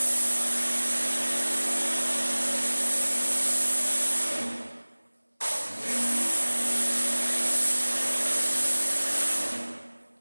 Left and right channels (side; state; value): both; inverted; correlation -1.00